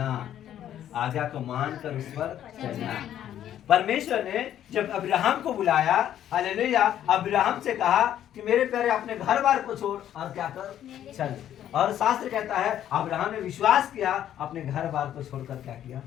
आज्ञा को मानकर उस पर चलना। परमेश्वर ने जब अब्राहम को बुलाया, हालेलुया, अब्राहम से कहा कि मेरे प्यारे अपने घर बार को छोड़ और क्या कर, चल। और शास्त्र कहता है अब्राहम ने विश्वास किया, अपने घर बार को छोड़कर क्या किया,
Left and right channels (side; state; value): right; quieter; 11.0 dB